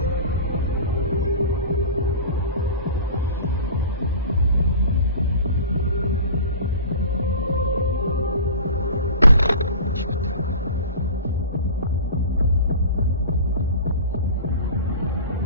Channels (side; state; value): both; inverted; correlation -0.38